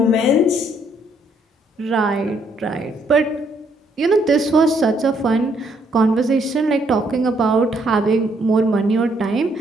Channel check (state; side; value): normal; both; correlation 0.70